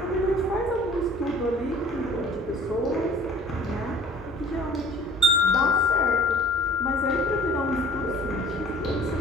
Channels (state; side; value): normal; both; correlation 0.49